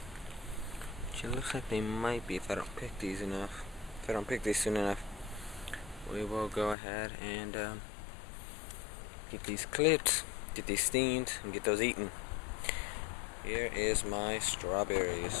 Which it looks like they might be if I don't pick these enough. If I don't pick these soon enough, we will go ahead and get these clipped, get these steamed, and get those eaten. Here is my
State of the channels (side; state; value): right; drops out; at 6.8 s